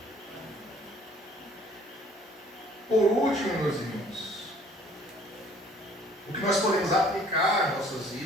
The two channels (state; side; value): normal; both; correlation 0.56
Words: Por último, meus irmãos, o que nós podemos aplicar às nossas